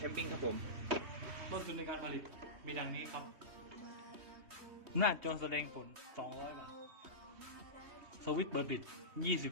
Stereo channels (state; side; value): late; left; 3.2 ms